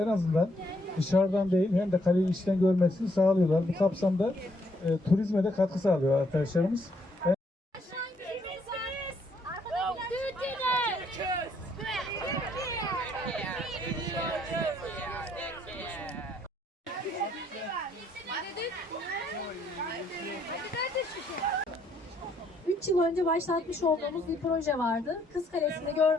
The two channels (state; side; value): normal; both; correlation 0.70